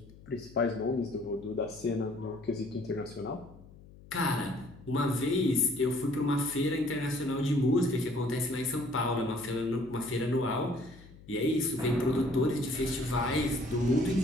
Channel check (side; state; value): left; noise; hum, 21 dB below the sound